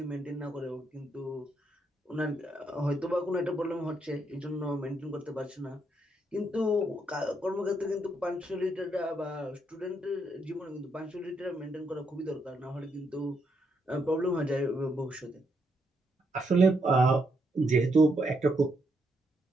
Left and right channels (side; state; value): both; normal; correlation 0.77